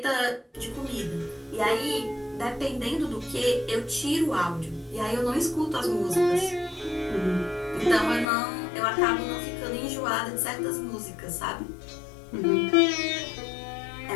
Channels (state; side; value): drops out; right; at 8.2 s